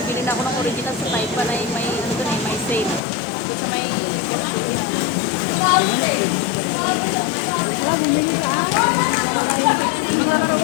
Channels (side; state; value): right; drops out; at 3.0 s